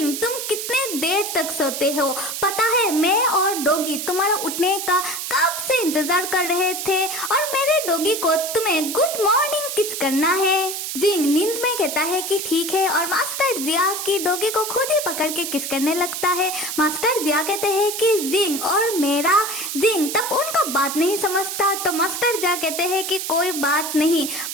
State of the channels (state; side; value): noise; right; hiss, 5 dB below the sound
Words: तुम कितने देर तक सोते हो, पता है मैं और डॉगी तुम्हारा उठने का कब से इंतजार कर रहे थे और मेरे डॉगी को तुम्हें गुड मॉर्निंग किस करना है। जिंग नींद में कहता है कि ठीक है और मास्टर जिया की डॉगी को खुद ही पकड़ के किस करने लगता है। मास्टर जिया कहते हैं कि जिंग और मेरा जिंग तब उनका बात नहीं समझता तो मास्टर जिया कहते हैं कि कोई बात नहीं,